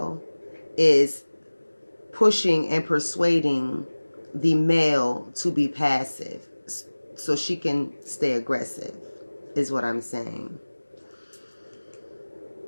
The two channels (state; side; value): inverted; both; correlation -1.00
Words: is pushing and persuading the male to be passive so she can stay aggressive, is what I'm saying.